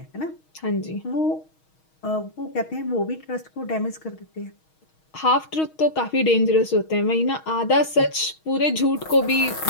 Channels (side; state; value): right; late; 6.3 ms